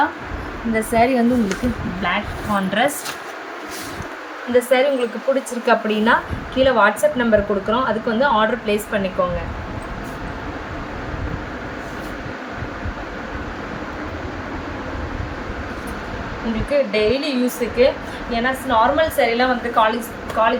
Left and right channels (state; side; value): identical; both; correlation 1.00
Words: இந்த saree வந்து உங்களுக்கு பிளாக் கான்ட்ராஸ்ட். இந்த saree உங்களுக்கு பிடிச்சிருக்கு அப்படின்னா கீழே வாட்ஸ்அப் நம்பர் கொடுக்குறோம், அதுக்கு வந்து ஆர்டர் ப்ளேஸ் பண்ணிக்கோங்க. உங்களுக்கு டெய்லி யூஸுக்கு, ஏன்னா நார்மல் சாரீலாம் வந்து